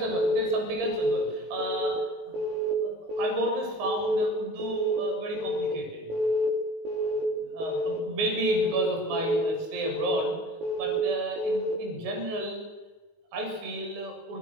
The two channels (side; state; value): left; late; 19 ms